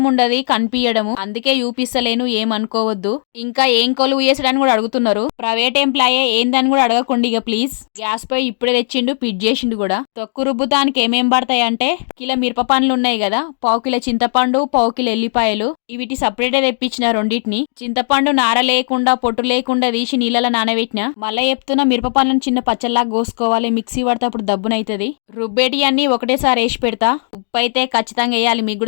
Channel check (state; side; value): silent; right; digital silence